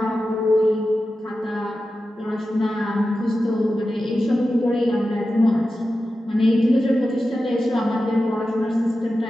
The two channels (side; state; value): both; normal; correlation 0.92